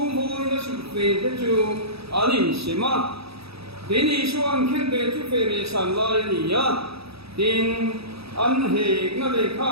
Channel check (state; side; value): late; left; 0.77 ms